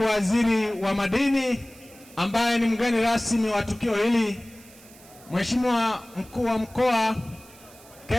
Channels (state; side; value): noise; right; hiss, 23 dB below the sound